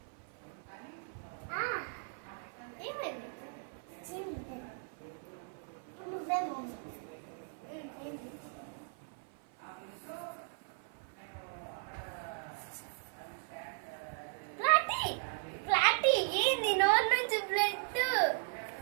ఏమైంది? నువ్వే ఫ్లాటీ ఏంది? నోరు నుంచి బ్లడ్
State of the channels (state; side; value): silent; left; 53 dB below the other